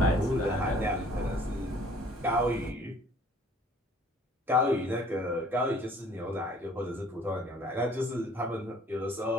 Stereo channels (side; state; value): both; normal; correlation 0.55